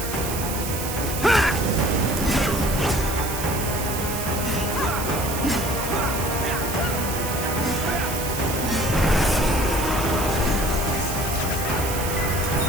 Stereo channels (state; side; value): noise; right; hiss, 6 dB below the sound